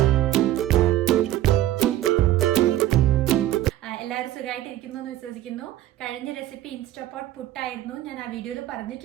എല്ലാവരും സുഖമായിട്ടിരിക്കുന്നു എന്ന് വിശ്വസിക്കുന്നു. കഴിഞ്ഞ റെസിപ്പി ഇൻസ്റ്റാപോട്ട് പുട്ടായിരുന്നു. ഞാൻ ആ വീഡിയോയിൽ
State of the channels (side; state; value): left; quieter; 13.7 dB